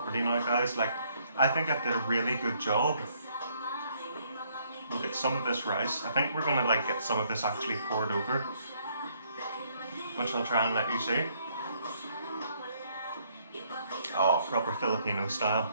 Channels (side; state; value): both; inverted; correlation -0.68